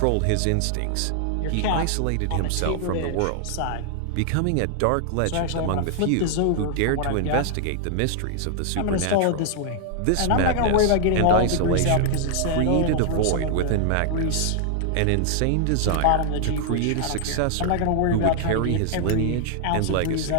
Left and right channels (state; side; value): different; both; correlation -0.01